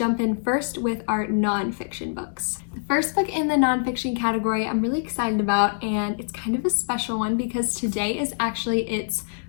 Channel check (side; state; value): right; silent; digital silence